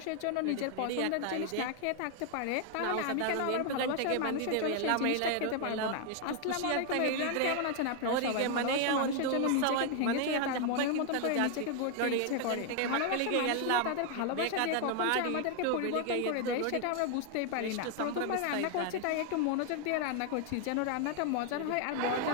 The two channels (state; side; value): different; both; correlation 0.00